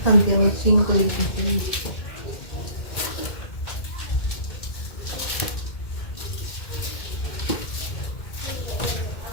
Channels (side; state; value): right; late; 2.1 ms